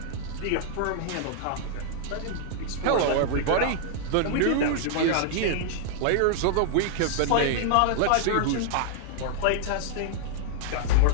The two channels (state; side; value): different; both; correlation -0.01